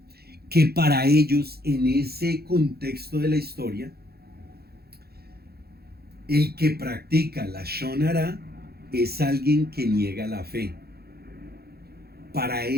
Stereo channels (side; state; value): left; late; 0.46 ms